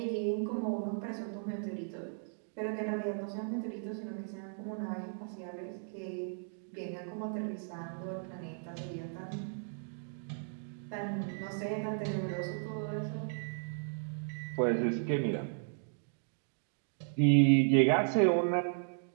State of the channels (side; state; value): left; silent; digital silence